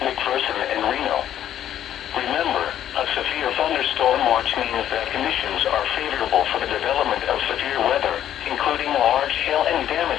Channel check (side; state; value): right; quieter; 11.0 dB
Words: McPherson and Reno. Remember, a severe thunderstorm watch means that conditions are favorable for the development of severe weather, including large hail and